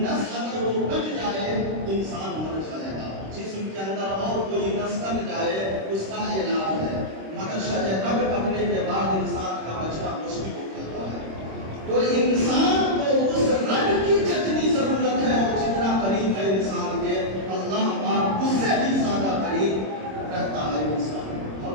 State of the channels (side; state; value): left; late; 26 ms